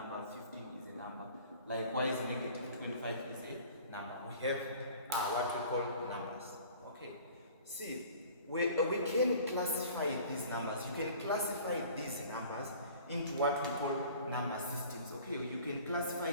15 is a number. Likewise, negative 25 is a number. We have what we call numbers. Okay. See, we can classify these numbers. You can classify these numbers into what we call number systems. Okay, you can classify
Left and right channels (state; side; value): inverted; both; correlation -0.47